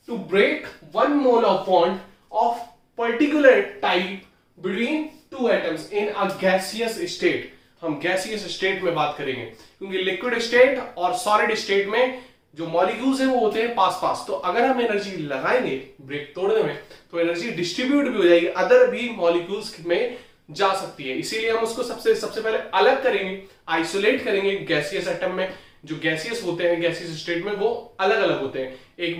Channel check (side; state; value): both; identical; correlation 1.00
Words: to break 1 mole of bond of particular type between 2 atoms in a gaseous state. हम गैसियस स्टेट में बात करेंगे, क्योंकि लिक्विड स्टेट और सॉलिड स्टेट में जो मॉलिक्यूल्स हैं वो होते हैं पास पास। तो अगर हम एनर्जी लगाएंगे ब्रेक तोड़ने में, तो एनर्जी डिस्ट्रीब्यूट भी हो जाएगी, अदर भी मॉलिक्यूल्स में जा सकती है। इसीलिए हम उसको सबसे पहले अलग करेंगे, आइसोलेट करेंगे गैसियस एटम में, जो गैसियस होते हैं गैसियस स्टेट में वो अलग अलग होते हैं, एक